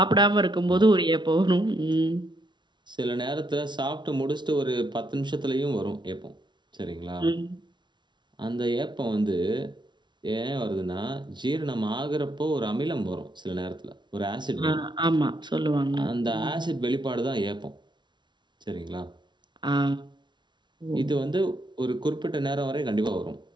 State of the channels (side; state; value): left; late; 0.22 ms